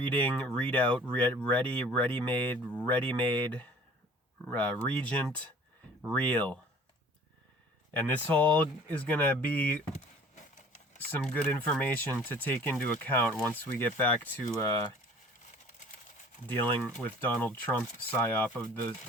read out, ready, ready-made, regent, real. And this all is going to be some good information to take into account once we get back to dealing with Donald Trump psyop of the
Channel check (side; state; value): both; normal; correlation 0.49